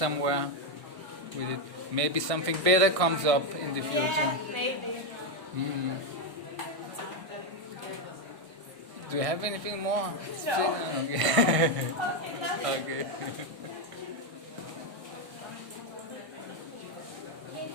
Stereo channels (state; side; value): late; left; 1.6 ms